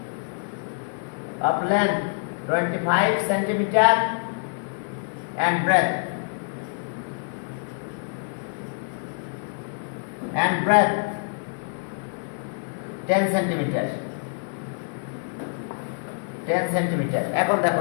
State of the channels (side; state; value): right; silent; 58 dB below the other